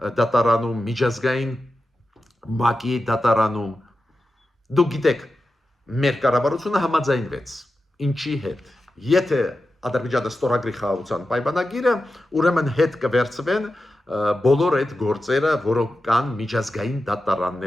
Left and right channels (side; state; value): both; normal; correlation 0.91